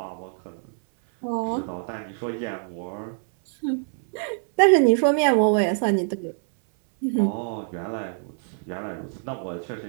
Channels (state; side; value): silent; left; 60 dB below the other